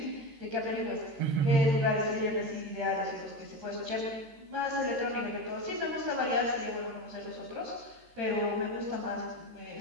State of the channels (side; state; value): left; late; 13 ms